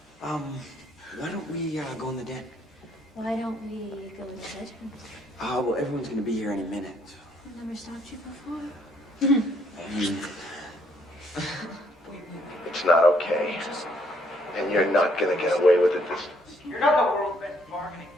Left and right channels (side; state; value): both; normal; correlation 0.68